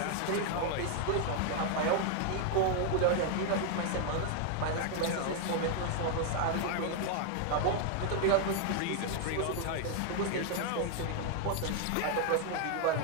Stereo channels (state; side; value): different; both; correlation 0.00